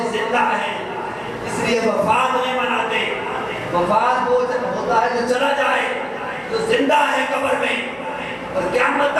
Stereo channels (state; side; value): identical; both; correlation 1.00